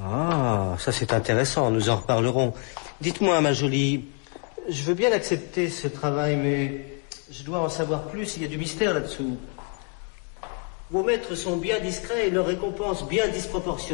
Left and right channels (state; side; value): quieter; right; 37.1 dB